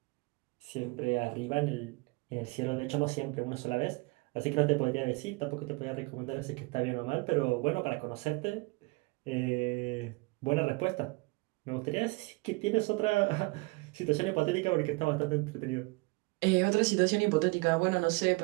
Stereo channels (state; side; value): quieter; left; 26.9 dB